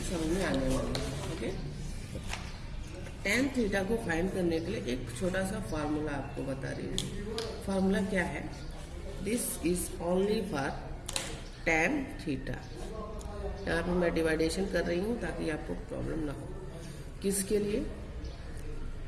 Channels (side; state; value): both; identical; correlation 1.00